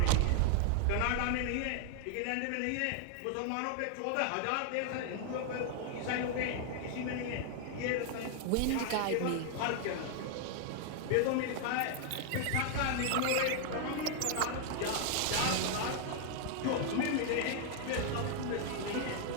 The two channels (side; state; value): both; different; correlation 0.00